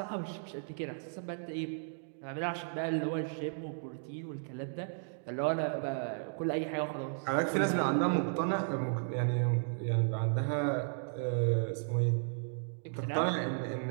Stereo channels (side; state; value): left; silent; digital silence